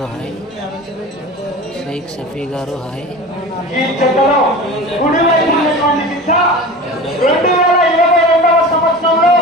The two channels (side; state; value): both; normal; correlation 0.34